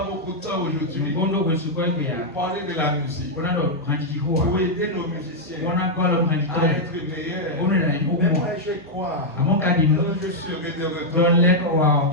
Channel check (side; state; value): both; normal; correlation -0.03